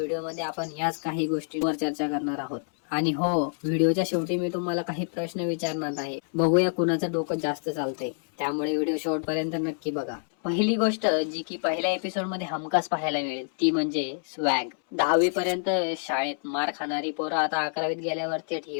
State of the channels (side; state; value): right; silent; 60 dB below the other